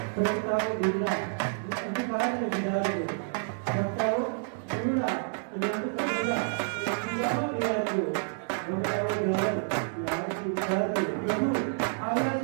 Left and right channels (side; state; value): left; silent; digital silence